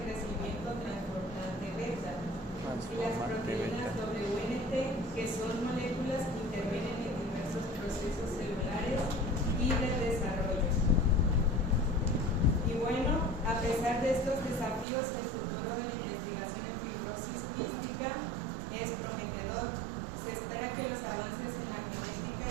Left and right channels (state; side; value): drops out; left; at 14.9 s